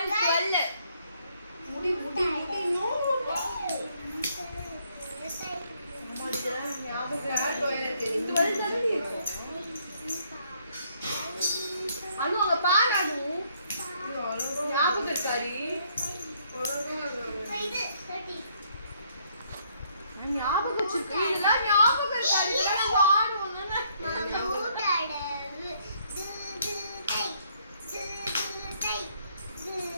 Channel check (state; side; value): inverted; both; correlation -0.68